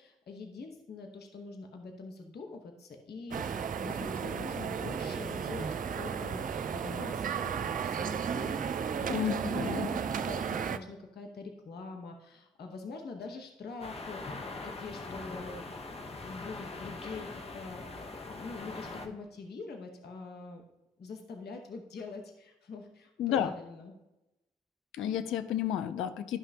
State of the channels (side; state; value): both; normal; correlation 0.44